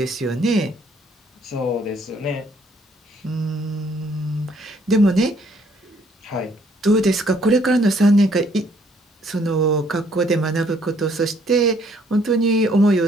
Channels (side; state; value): both; normal; correlation 0.65